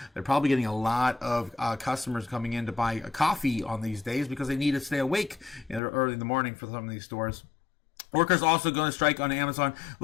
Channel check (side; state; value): right; drops out; at 5.8 s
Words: They're probably getting a lot of customers coming in to buy a coffee on these days because they need to stay awake early in the morning for some of these stores. Workers also going to strike on Amazon.